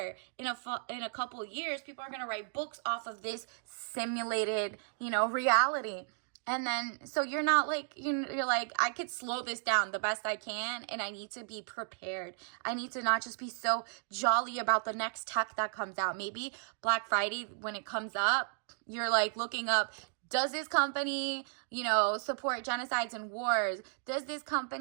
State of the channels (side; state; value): left; silent; digital silence